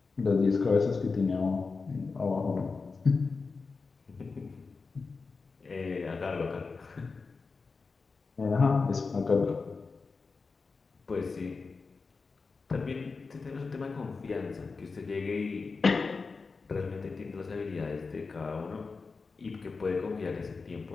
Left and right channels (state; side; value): quieter; right; 4.4 dB